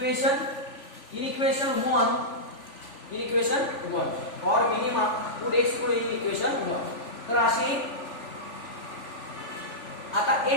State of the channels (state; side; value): late; right; 3.4 ms